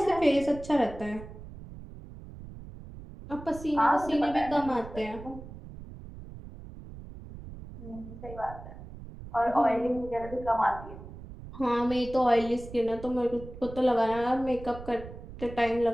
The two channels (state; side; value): noise; right; rumble, 14 dB below the sound